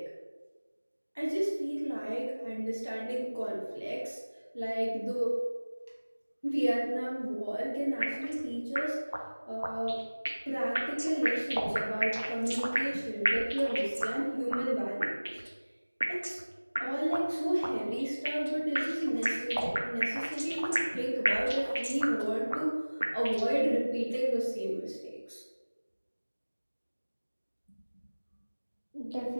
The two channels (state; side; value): inverted; both; correlation -1.00